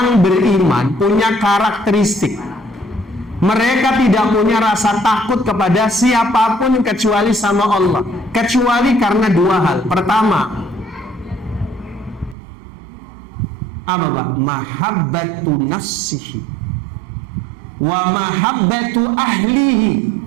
beriman punya karakteristik. Mereka tidak punya rasa takut kepada siapapun kecuali sama Allah. Kecuali karena dua hal. Pertama, apa Pak? Mahabbatu nafsihi wa mahabbatu ahlihi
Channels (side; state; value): left; drops out; at 12.4 s